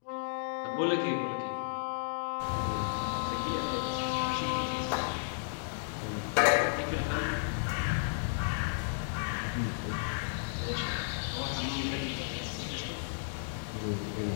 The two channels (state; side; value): silent; right; digital silence